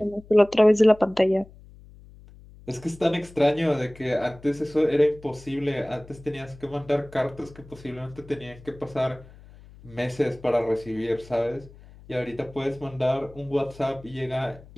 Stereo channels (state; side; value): noise; left; hum, 21 dB below the sound